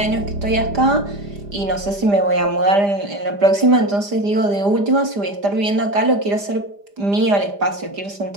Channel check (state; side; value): late; left; 5.0 ms